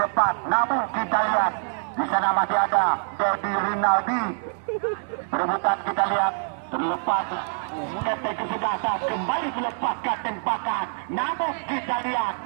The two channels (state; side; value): silent; left; 62 dB below the other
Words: depan, namun kita lihat di sana masih ada Dedi Rinaldi. Perebutan kita lihat terlepas, keseng kesebelasan kembali melepaskan tembakan, namun kita lihat